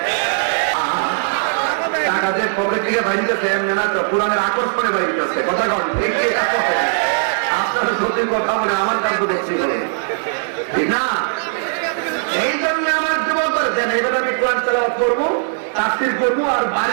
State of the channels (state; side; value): silent; left; digital silence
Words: টাকা যে পকেট থেকে বাইরেছে এমনি না তো, পুরানের আকর্ষণে বাইরেছে। কথা কন ঠিক আপনারা সত্যি কথা বলে আমার কাজ দেখছি বলে ঠিক না। এই জন্য আমার যুবক করেছেন এবার আমি কোরআন তেলাওয়াত করবো, তাফসীর করবো আর